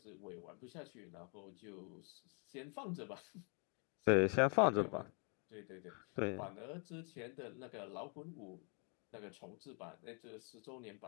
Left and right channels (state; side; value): quieter; right; 36.7 dB